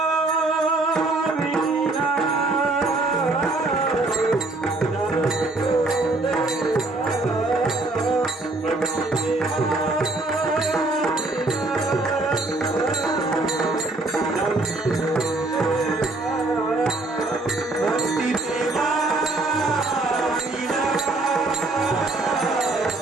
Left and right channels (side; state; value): left; quieter; 3.0 dB